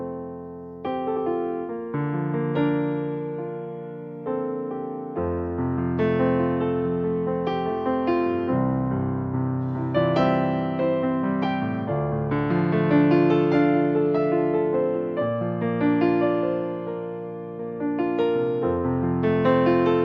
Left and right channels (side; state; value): both; identical; correlation 1.00